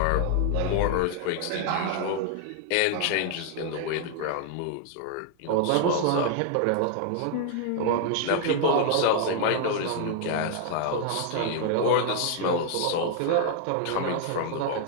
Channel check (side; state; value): both; different; correlation 0.00